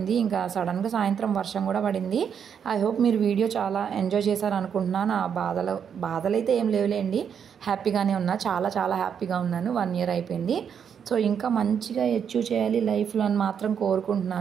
ఇంకా సడన్గా సాయంత్రం వర్షం కూడా పడింది. ఐ హోప్ మీరు వీడియో చాలా ఎంజాయ్ చేశారు అనుకుంటున్నాను. ఆ బాధలు అయితే ఏం లేవులేండి, హ్యాపీగానే ఉన్నా, చాలా చాలా హ్యాపీగా ఉన్నాను. 1 year అయిపోయింది. సో ఇంకా మంచిగా అచీవ్ చేయాలి లైఫ్లో అని మాత్రం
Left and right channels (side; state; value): left; quieter; 7.7 dB